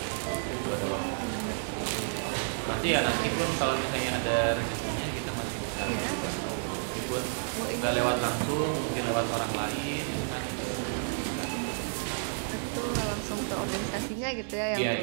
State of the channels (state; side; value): silent; left; digital silence